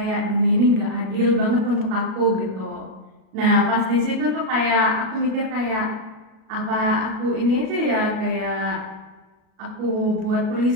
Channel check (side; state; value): left; late; 37 ms